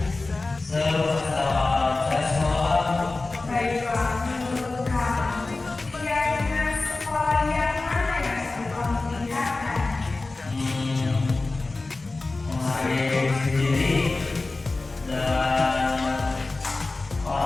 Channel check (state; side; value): quieter; right; 3.4 dB